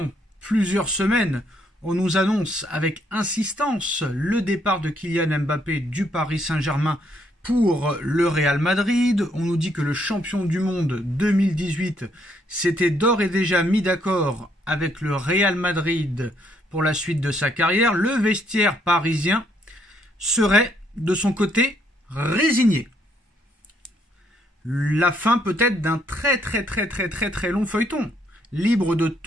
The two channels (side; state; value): both; normal; correlation 0.71